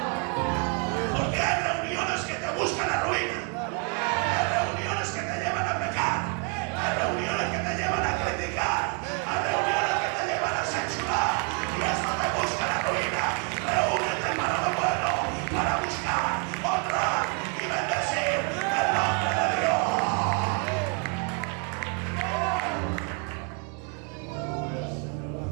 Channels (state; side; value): quieter; left; 38.4 dB